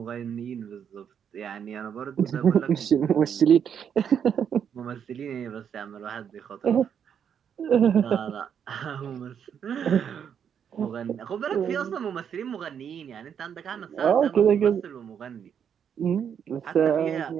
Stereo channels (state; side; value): quieter; left; 8.0 dB